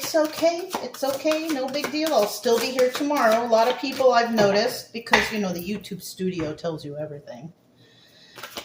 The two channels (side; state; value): both; identical; correlation 1.00